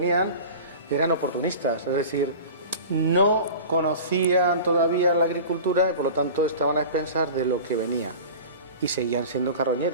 eran oportunistas, es decir, no conocían todavía la agricultura y por lo tanto estaban a expensas de lo que venía y seguían siendo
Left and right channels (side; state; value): both; inverted; correlation -0.37